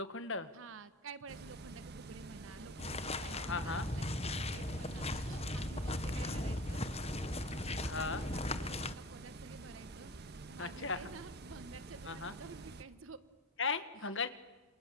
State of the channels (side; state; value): both; normal; correlation 0.34